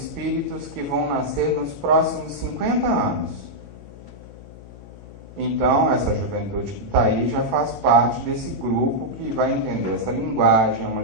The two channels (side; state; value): left; noise; hum, 17 dB below the sound